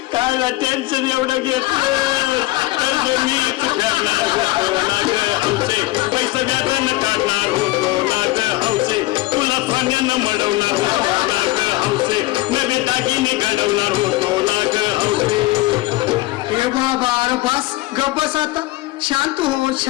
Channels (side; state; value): right; quieter; 19.2 dB